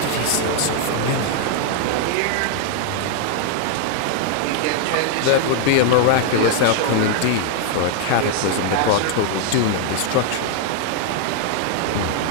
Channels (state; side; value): different; both; correlation 0.00